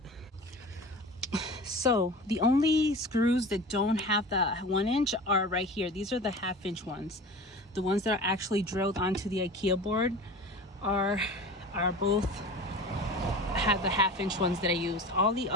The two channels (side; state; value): both; normal; correlation 0.36